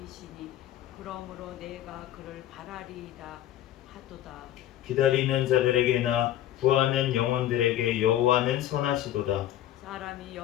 그러므로 내가 그를 바라리이다 하도다. 기다리는 자들에게나 구하는 영혼들에게 여호와는 선하시도다. 사람이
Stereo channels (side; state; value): right; quieter; 12.5 dB